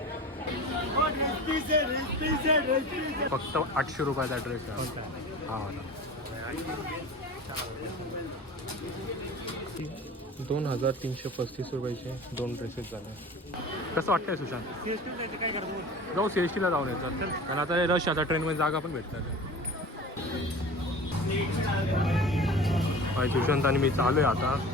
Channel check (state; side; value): normal; both; correlation 0.37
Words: फक्त 800 रुपयाचा ड्रेस आहे हा वाला. 2335 रुपयाचे 2 ड्रेसेस झाले. कसं वाटतंय सुशांत? जाऊ CST ला जाऊन येतात कारण आता रश आता ट्रेनमध्ये जागा पण भेटतात. सुशांत आणि मी चालू आहे आता.